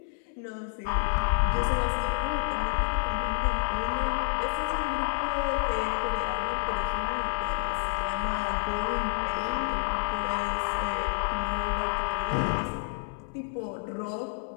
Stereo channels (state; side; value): silent; right; 59 dB below the other